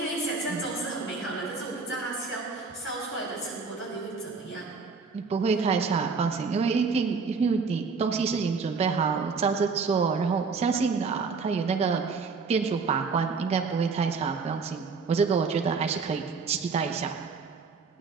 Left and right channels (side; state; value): left; quieter; 4.9 dB